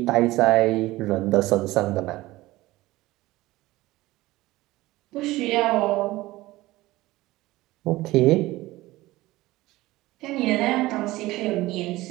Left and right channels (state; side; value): quieter; left; 18.3 dB